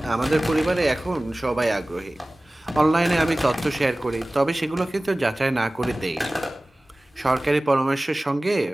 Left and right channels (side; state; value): both; normal; correlation 0.98